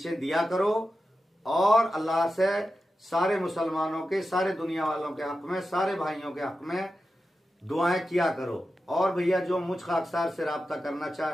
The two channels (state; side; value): normal; both; correlation 0.91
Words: दिया करो, और अल्लाह से सारे मुसलमानों के, सारे दुनिया वालों के हक में, सारे भाइयों के हक में दुआएं किया करो। और भैया जो मुझ खाकसार से राब्ता करना